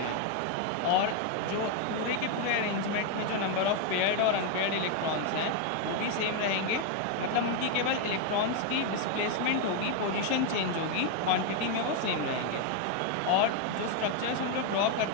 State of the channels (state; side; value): different; both; correlation 0.01